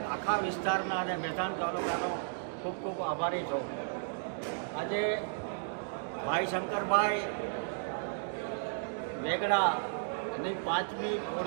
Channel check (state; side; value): silent; left; digital silence